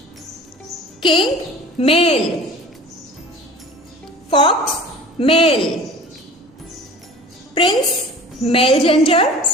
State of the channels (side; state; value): both; normal; correlation 0.42